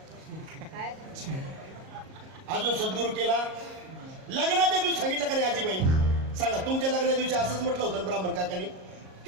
अजून सद्गुरू केला. लग्नाच्या दिवशी सांगितलं का नाही आजीबाई? सांगा, तुमच्या लग्नाच्या दिवशी असंच म्हटलं होतं ब्राह्मण काकांनी.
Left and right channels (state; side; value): late; left; 38 ms